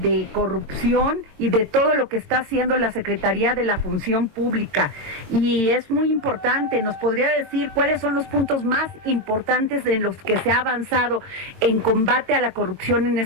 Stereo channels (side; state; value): left; late; 22 ms